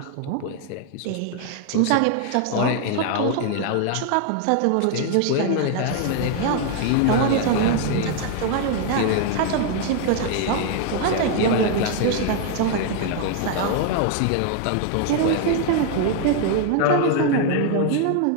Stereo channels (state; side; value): different; both; correlation 0.00